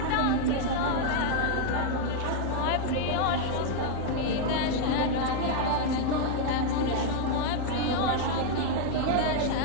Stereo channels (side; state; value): both; different; correlation 0.00